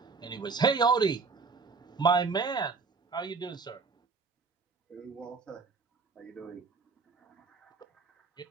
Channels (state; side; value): quieter; left; 4.6 dB